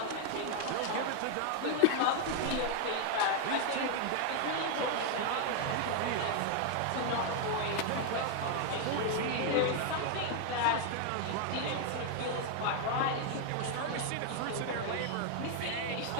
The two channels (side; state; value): both; different; correlation 0.00